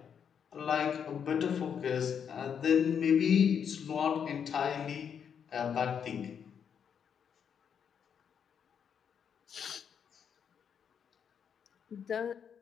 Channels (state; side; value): quieter; right; 7.6 dB